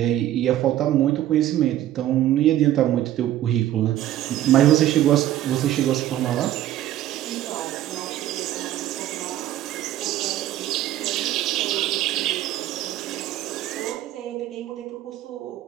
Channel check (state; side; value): quieter; left; 13.2 dB